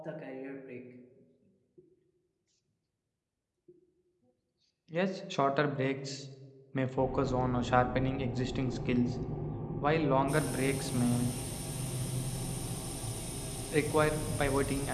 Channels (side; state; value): both; identical; correlation 1.00